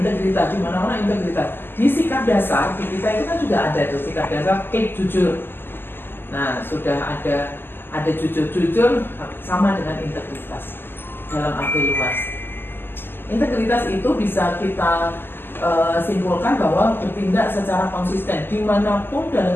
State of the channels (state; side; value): late; right; 0.099 ms